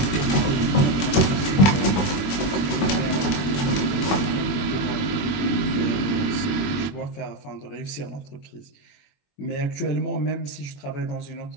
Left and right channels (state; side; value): late; right; 21 ms